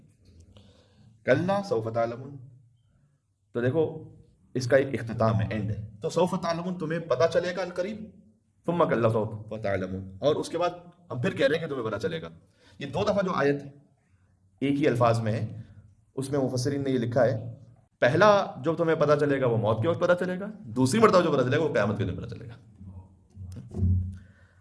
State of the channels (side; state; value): both; identical; correlation 1.00